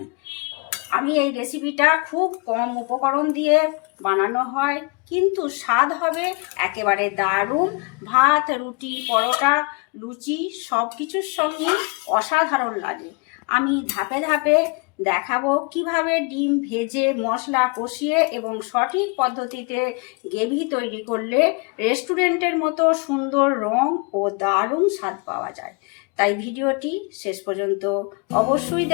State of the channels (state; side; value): quieter; right; 30.3 dB